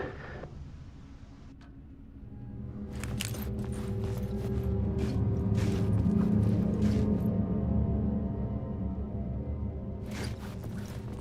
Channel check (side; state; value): both; identical; correlation 1.00